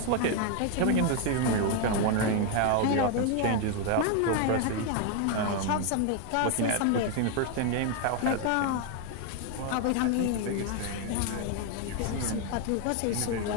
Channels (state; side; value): different; both; correlation 0.00